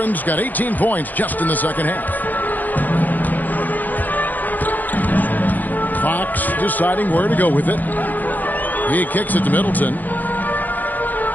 got 18 points just in the second half. Fox deciding where to go with it. He kicks it to Middleton.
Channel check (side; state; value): right; late; 0.084 ms